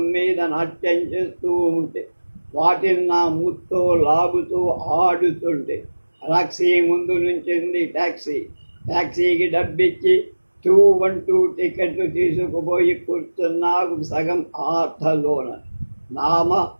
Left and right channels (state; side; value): inverted; both; correlation -1.00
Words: మీద నాట్యం చేస్తూ ఉంటే వాటిని నా ముత్తో లాగుతూ ఆడుతుంటే టాక్సీ ముందు నుంచింది టాక్సీకి డబ్బిచ్చి 212 టికెట్లు తీసుకుపోయి కూర్చున్నాకు సగం ఆటలోన.